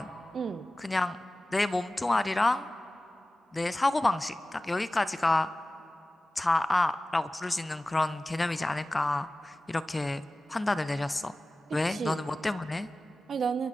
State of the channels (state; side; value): normal; both; correlation 0.96